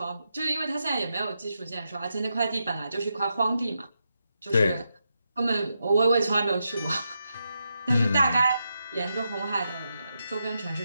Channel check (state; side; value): inverted; both; correlation -0.85